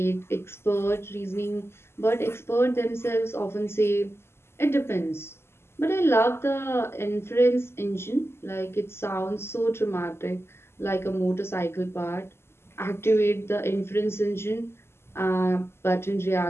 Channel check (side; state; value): right; late; 0.12 ms